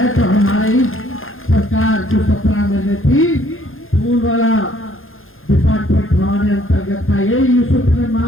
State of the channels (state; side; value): late; right; 0.60 ms